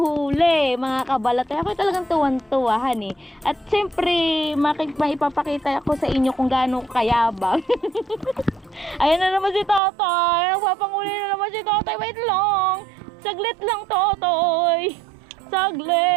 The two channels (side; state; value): left; drops out; at 9.8 s